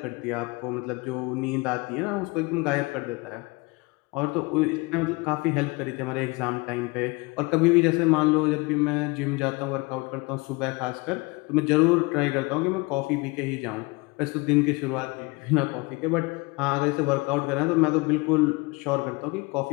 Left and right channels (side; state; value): right; quieter; 25.9 dB